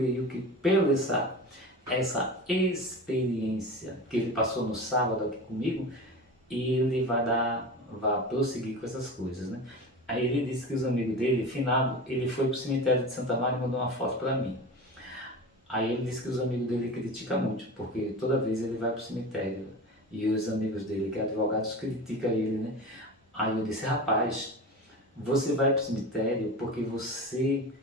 que pela essa experiência que ele passou no sábado aqui comigo, ele vai prosseguir com essas coisas, né? Aí ele disse que os amigos dele, finado, ele foi pro cemitério de Santa Maria e mandou uma foto para mim. Aí ele disse que os amigos dele criticam muito, porque toda vez ele vai pro cemitério e os amigos dele, que é advogados, criticam ele, né? Aí eu disse, rapaz, você vai pro cemitério porque você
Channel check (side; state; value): both; normal; correlation 0.30